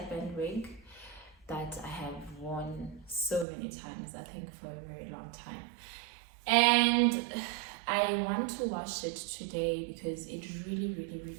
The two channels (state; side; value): drops out; left; at 3.5 s